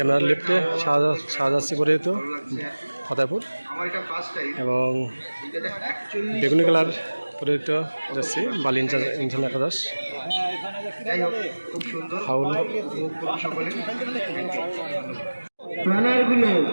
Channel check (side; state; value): both; inverted; correlation -1.00